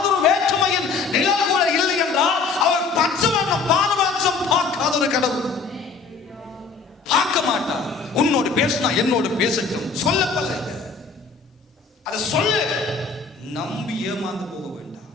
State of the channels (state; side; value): quieter; right; 4.7 dB